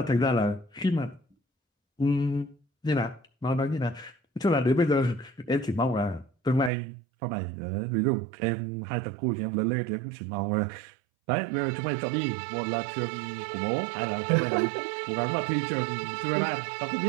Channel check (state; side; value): drops out; left; at 6.7 s